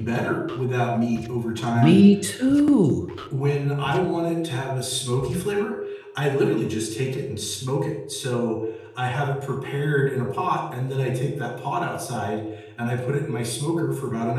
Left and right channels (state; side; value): identical; both; correlation 1.00